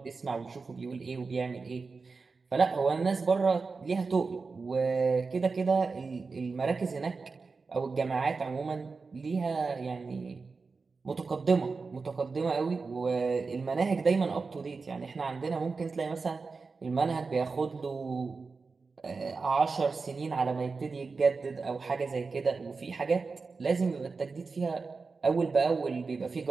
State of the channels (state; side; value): quieter; left; 4.4 dB